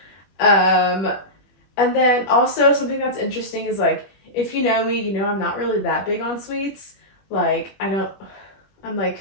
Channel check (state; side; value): late; right; 21 ms